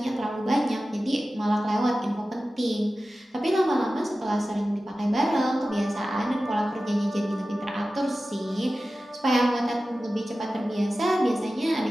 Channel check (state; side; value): normal; both; correlation 0.95